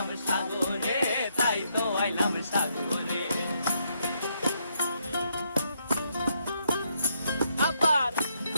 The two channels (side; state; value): both; inverted; correlation -0.75